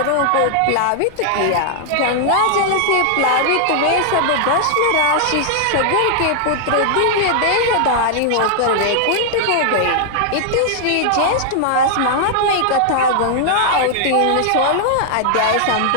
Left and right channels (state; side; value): different; both; correlation -0.01